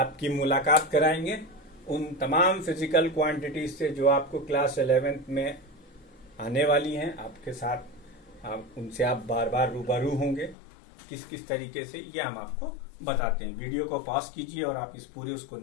मुलाकात कराएंगे उन तमाम फिजिकल क्वांटिटीज से जो आपको क्लास 11th में आने वाली हैं। आपके साथ उनसे आप बार बार रूबरू होंगे। किस किस तरीके से, ये हम आपको बताते हैं। वीडियो को पॉज कीजिए और आप इस पूरे उसको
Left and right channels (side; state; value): right; drops out; at 10.6 s